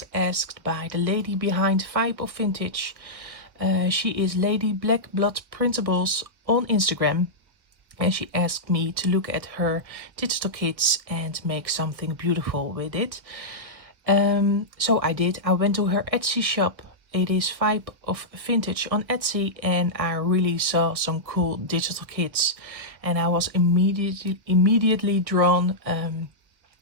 asked by the lady behind Vibe of Vintage. She is Lady Black Blood Printables on Instagram and she asked me to look at her digital kits and make something beautiful with it. So I did. I went to her Etsy shop. It is Vibe of Vintage on Etsy and I really saw some cool digital kits and I was immediately drawn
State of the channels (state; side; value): late; left; 1.7 ms